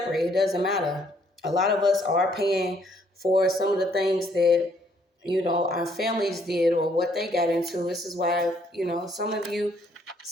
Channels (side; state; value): both; normal; correlation 0.67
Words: It doesn't matter. A lot of us are paying for some of the things that, our families did or what they got into. This is why, some of you